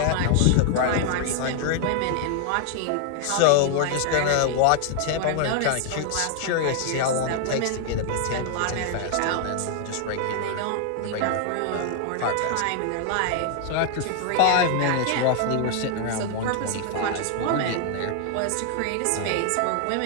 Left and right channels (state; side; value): different; both; correlation 0.00